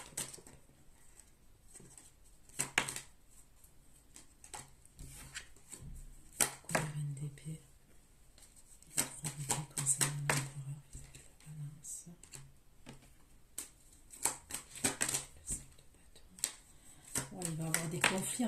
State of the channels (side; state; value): both; identical; correlation 1.00